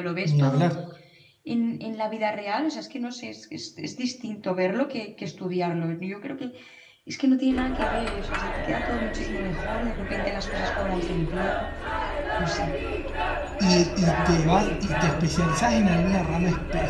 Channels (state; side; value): identical; both; correlation 1.00